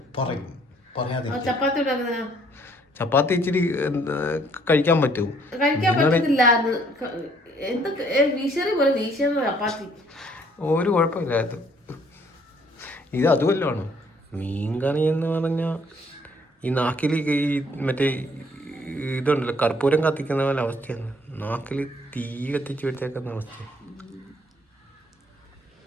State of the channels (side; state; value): both; normal; correlation 0.63